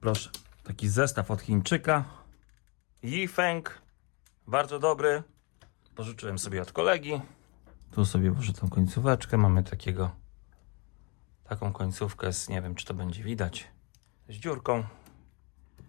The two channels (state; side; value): quieter; right; 31.6 dB